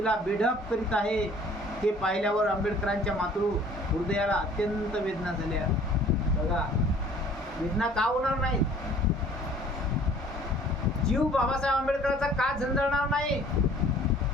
बेढप करीत आहे. हे पाहिल्यावर आंबेडकरांच्या मातृ हृदयाला अत्यंत वेदना झाल्या. बघा, वेदना का होणार नाही? जीव बाबासाहेब आंबेडकरांचा का झंझळणार नाही?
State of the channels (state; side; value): normal; both; correlation 0.53